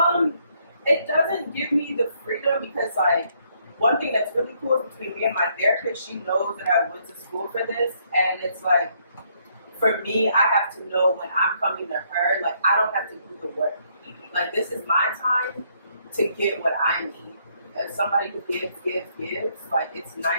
It doesn't give me the freedom because like one thing that's really cool is between me and my therapist, she knows that I went to school for this, and it's like, for me, I have to know when I'm coming to her, like, I don't have to do the work. Like, this is my time to get what I need. As somebody who gives, like, it's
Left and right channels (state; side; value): inverted; both; correlation -0.70